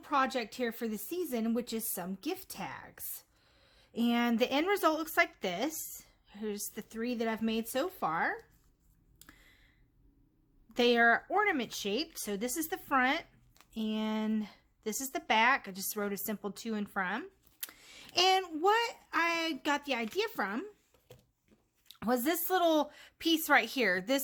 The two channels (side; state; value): both; identical; correlation 1.00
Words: here for the season, which is some gift tags. And the end result looks like this. Here's the 3 that I've made so far. They are ornament shaped, so this is the front and this is the back. I just wrote a simple to and from. And what I got the idea from was this little piece right here.